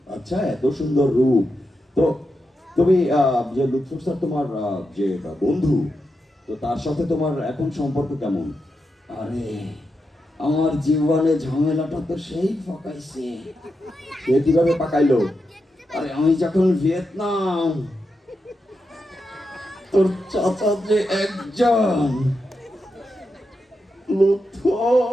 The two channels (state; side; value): normal; both; correlation 0.87